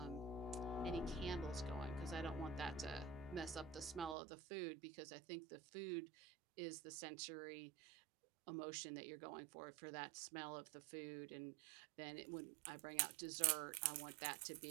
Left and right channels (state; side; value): drops out; left; at 4.2 s